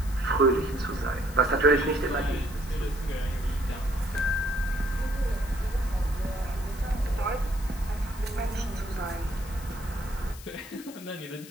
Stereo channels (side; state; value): left; noise; hiss, 17 dB below the sound